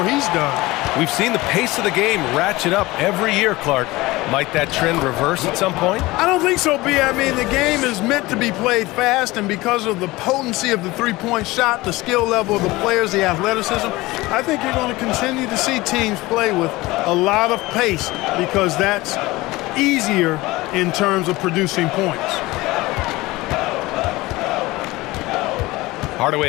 he's done. We've seen the pace of the game ratchet up every year, Clark. Might that trend reverse at some point? I don't think so, B. I mean, the game is meant to be played fast, and because of the potency of the three-point shot, the skill level of the players, the athleticism, I think you're going to continue to see teams play with a lot of pace because that's easier in terms of producing points.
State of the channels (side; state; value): right; quieter; 20.3 dB